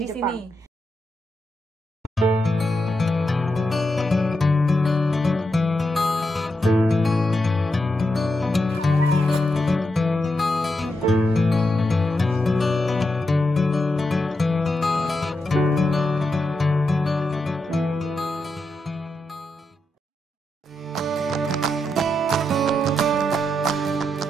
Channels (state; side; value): normal; both; correlation 0.85